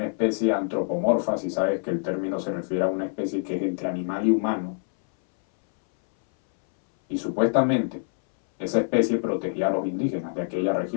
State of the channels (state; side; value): silent; right; 62 dB below the other